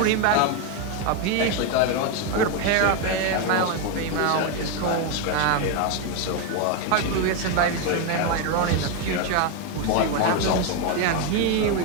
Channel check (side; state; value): both; different; correlation 0.02